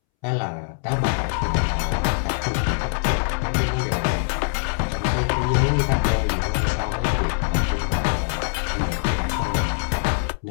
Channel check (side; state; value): right; silent; 63 dB below the other